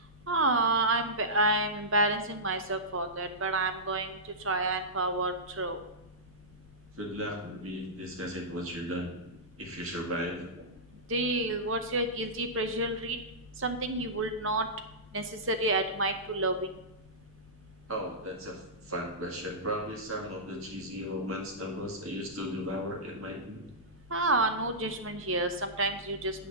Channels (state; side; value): noise; left; rumble, 23 dB below the sound